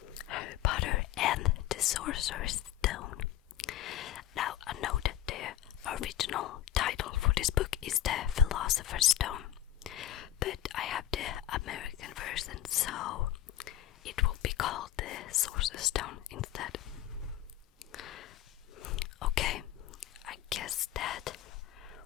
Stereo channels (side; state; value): right; quieter; 12.6 dB